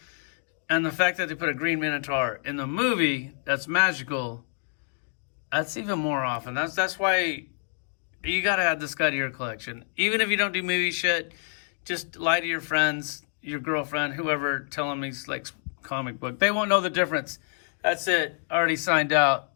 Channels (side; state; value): right; silent; 60 dB below the other